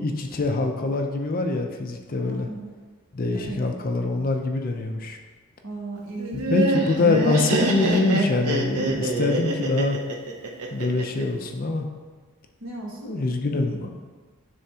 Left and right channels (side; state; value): both; normal; correlation 0.46